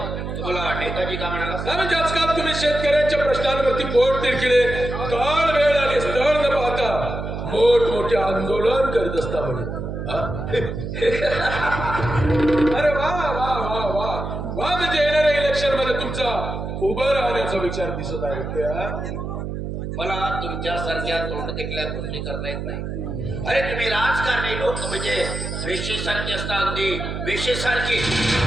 तुम्हाला नेताजी का म्हणाला? नाही म्हणजे आजकाल तुम्ही शेतकऱ्यांच्या प्रश्नांवरती पोट तिरकिले काळ वेळ आणि स्थळ न पाहता मोठमोठे आंदोलन करीत असता म्हणे. अरे वा वा वा वा वा म्हणजे येणाऱ्या इलेक्शन मध्ये तुमचा उभं राहण्याचा विचार दिसत आहे. मला तुमच्यासारख्या तोंड टेकल्या गोष्टी करता येत नाही. अरे तुम्ही राजकारणी लोक म्हणजे वेशीसारखी असता, अगदी वेशीसारखी.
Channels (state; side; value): noise; right; hum, 5 dB below the sound